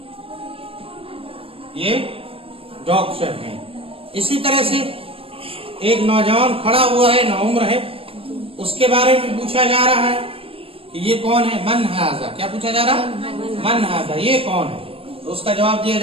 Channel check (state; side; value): late; left; 0.27 ms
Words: یہ ڈاکٹر ہیں. اسی طرح سے ایک نوجوان کھڑا ہوا ہے، نوعمر ہے، اس کے بارے میں پوچھا جا رہا ہے کہ یہ کون ہے؟ من ھذا. کیا پوچھا جا رہا؟ من ھذا یہ کون ہے؟ تو اس کا جواب دیا